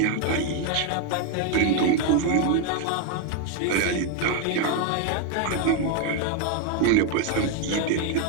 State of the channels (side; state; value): both; different; correlation 0.01